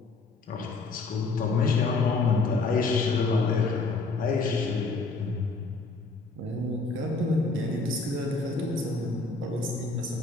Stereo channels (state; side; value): quieter; right; 3.7 dB